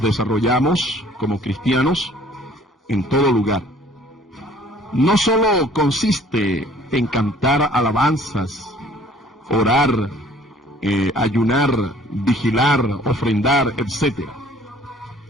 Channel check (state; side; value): normal; both; correlation 0.55